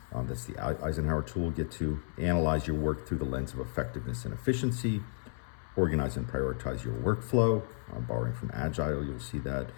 That's the Eisenhower tool we'll get to. Analyze your work through the lens of effectiveness and efficiency. Organize and prioritize your workflow. Borrowing from Agile, you'll see that.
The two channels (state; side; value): silent; right; 56 dB below the other